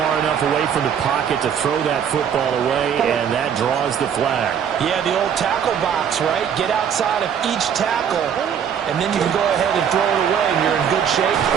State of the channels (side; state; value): left; quieter; 8.1 dB